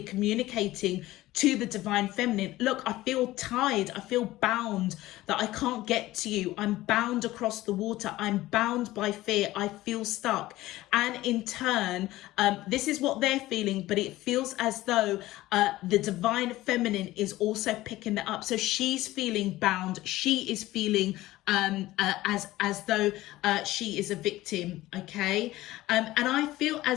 communicating to the divine feminine. Look, I feel tied, I feel bound, that I can't get to you. I'm bound across the water. I'm bound by fear. I feel stuck. And in turn, this is what they're feeling, but it feels as though the divine feminine is also picking that up. So she's feeling bound. She is feeling as though she is a victim, okay? And I feel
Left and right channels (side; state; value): right; quieter; 16.9 dB